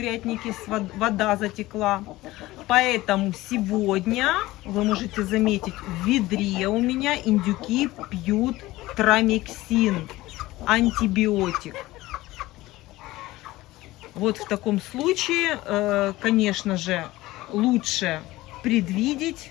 вода затекла. Поэтому сегодня, вы можете заметить, в ведре у меня индюки пьют трамексин, антибиотик. Вот в таком случае, конечно же, лучше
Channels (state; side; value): quieter; right; 18.1 dB